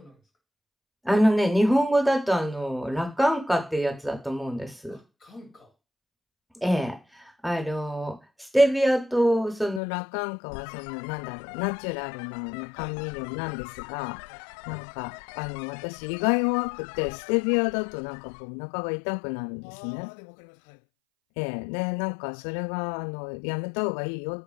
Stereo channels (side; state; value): right; drops out; at 9.8 s